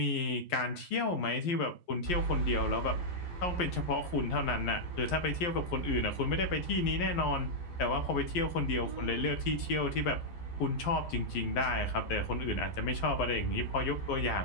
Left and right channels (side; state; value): right; late; 11 ms